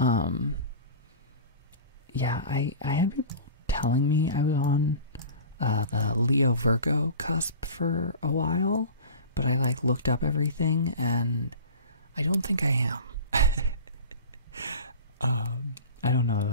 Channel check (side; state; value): both; inverted; correlation -0.36